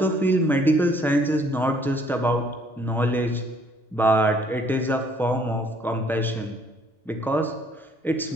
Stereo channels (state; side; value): normal; both; correlation 0.62